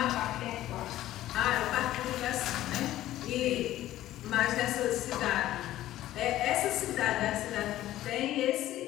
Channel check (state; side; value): quieter; right; 14.2 dB